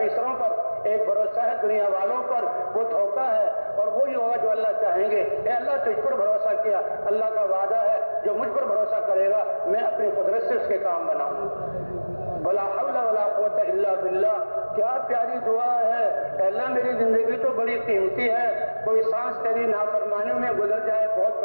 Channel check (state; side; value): inverted; both; correlation -1.00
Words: پر, ایک بھروسہ ہے دنیا والوں پر, وہ دھوکہ ہے اور وہی ہوگا جو اللہ چاہیں گے. اے اللہ تجھ پر بھروسہ کیا, اللہ کا وعدہ ہے جو مجھ پر بھروسہ کرے گا میں اپنی قدرت سے اس کے کام بناؤں. ولا حول ولا قوت الا باللہ. کیا پیاری دعا ہے. اے اللہ میری زندگی تو بڑی قیمتی ہے, کوئی سانس تیری نافرمانی میں گزر جائے بہت